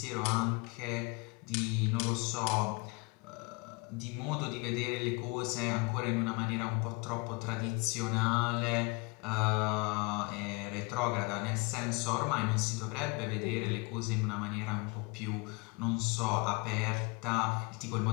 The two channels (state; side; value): quieter; right; 28.3 dB